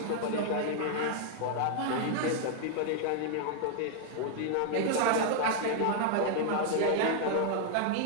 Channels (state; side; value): different; both; correlation 0.00